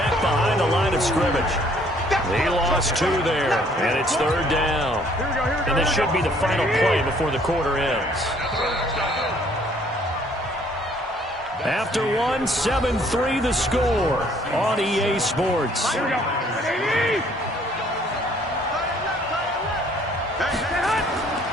behind the line of scrimmage. He lost 2 there, and it's 3rd down. And this should be the final play before the quarter ends. After 1, 7-3 the score on EA Sports. Here we go.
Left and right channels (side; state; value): both; normal; correlation 0.61